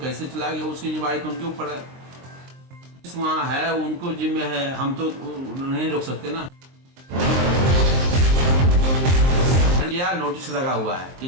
चलाएंगे उसकी जिम्मेवारी तो उनके ऊपर है। वहाँ है उनको जिम्मे है, हम तो नहीं रोक सकते ना। या नोटिस लगा हुआ है कि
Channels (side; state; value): left; late; 23 ms